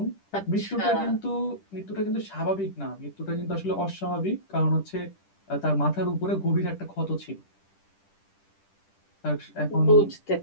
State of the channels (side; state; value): right; late; 10 ms